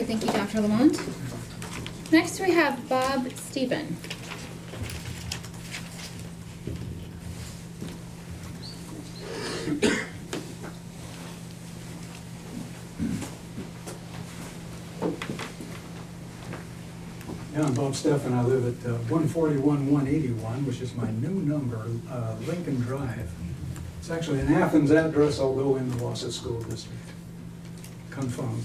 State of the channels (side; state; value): both; identical; correlation 1.00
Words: thank you, Dr. Lamont. Next, we have Bob Stephen. Yeah, I'm Bob Steffen. I live at 141-181, which is my new number, Lincoln Drive. It's actually an Athens address, although in the Wausau School District.